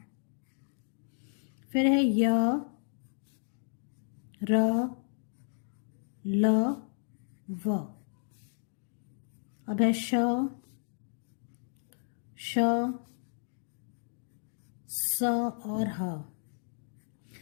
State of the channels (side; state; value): right; silent; digital silence